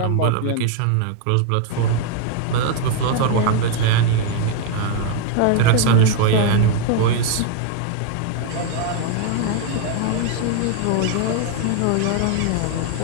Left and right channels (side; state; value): both; different; correlation 0.01